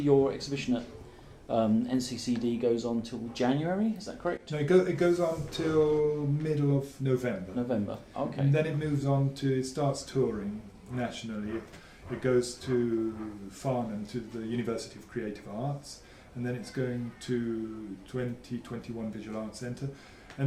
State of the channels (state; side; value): identical; both; correlation 1.00